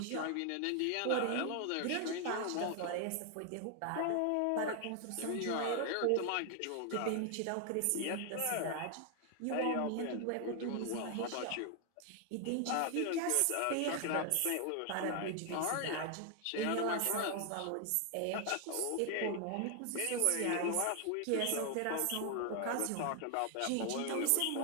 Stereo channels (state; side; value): different; both; correlation 0.00